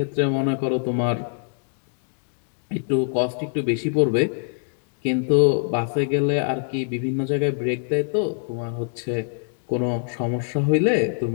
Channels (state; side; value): silent; right; digital silence